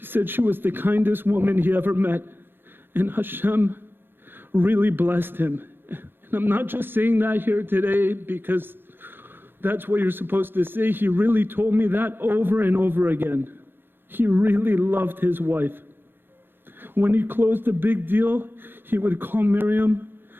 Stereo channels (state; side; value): late; left; 0.10 ms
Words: said she was the kindest woman he ever met, and Hashem really blessed him. And I'm not just saying that here today because that's what you're supposed to say. He really told me that over and over again. He really loved his wife. When he closed a big deal, he would call Miriam